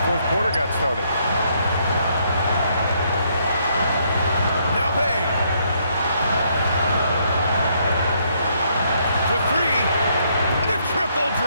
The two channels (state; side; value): inverted; both; correlation -0.71